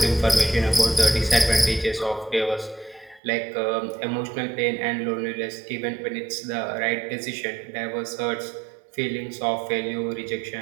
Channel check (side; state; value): left; drops out; at 3.2 s